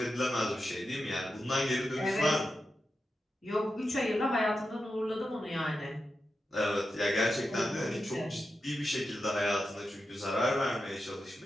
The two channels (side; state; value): both; normal; correlation 0.90